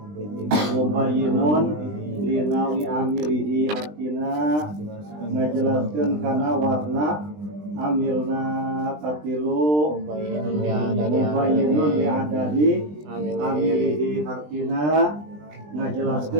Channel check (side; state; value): left; late; 20 ms